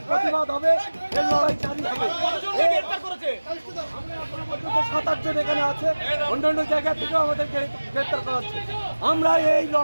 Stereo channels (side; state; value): both; inverted; correlation -1.00